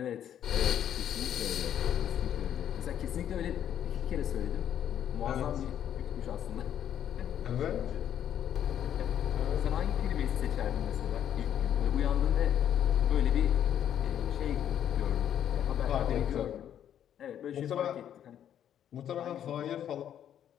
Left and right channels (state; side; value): quieter; right; 10.0 dB